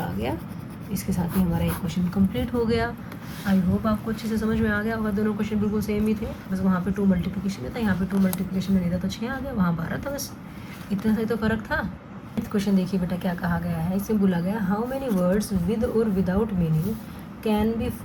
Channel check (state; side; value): identical; both; correlation 1.00